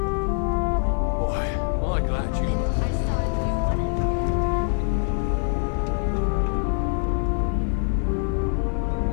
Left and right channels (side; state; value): right; silent; digital silence